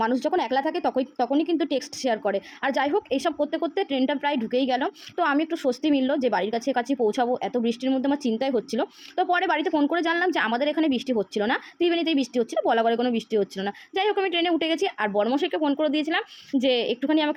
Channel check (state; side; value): identical; both; correlation 1.00